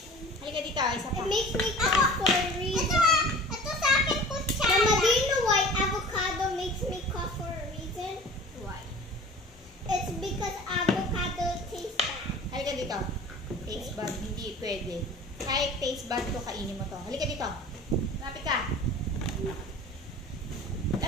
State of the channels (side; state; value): both; normal; correlation 0.42